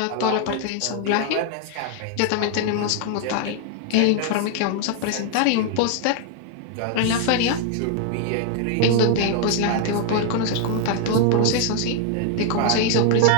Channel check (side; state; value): both; different; correlation 0.00